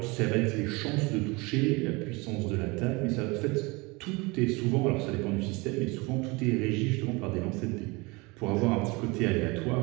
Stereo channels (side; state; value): left; quieter; 25.7 dB